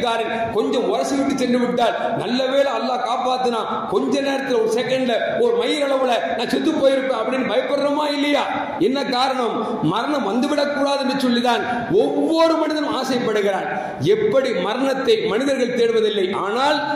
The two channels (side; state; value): both; identical; correlation 1.00